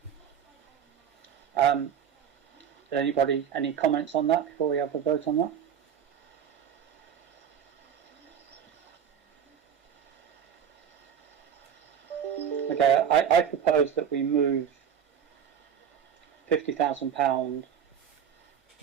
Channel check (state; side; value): quieter; left; 8.4 dB